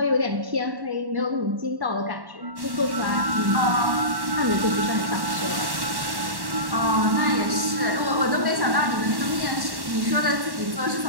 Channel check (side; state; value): left; late; 1.1 ms